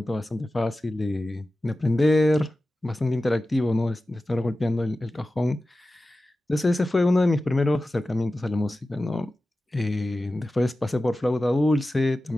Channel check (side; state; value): both; normal; correlation 0.94